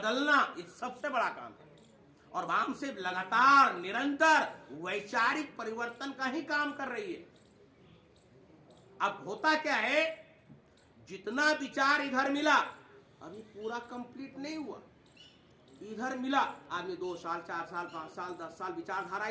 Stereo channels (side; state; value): both; identical; correlation 1.00